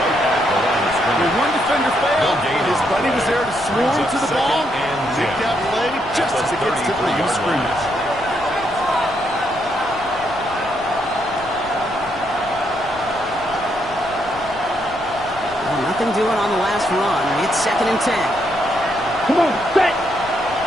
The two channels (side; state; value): left; noise; rumble, 19 dB below the sound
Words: One defender failed, and his buddy was there to swarm to the ball and make that play just as it gets to the line of scrimmage. Well, nothing doing on the last run. It's 2nd and 10. Come on, set.